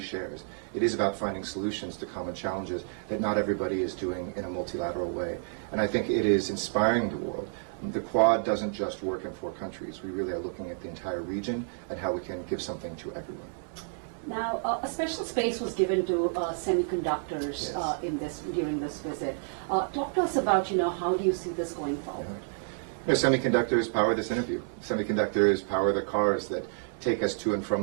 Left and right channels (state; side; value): silent; left; 58 dB below the other